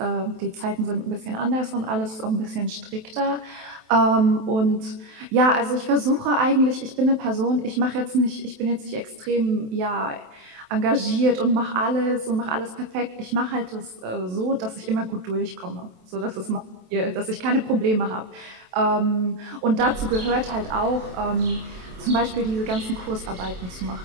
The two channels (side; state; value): left; late; 27 ms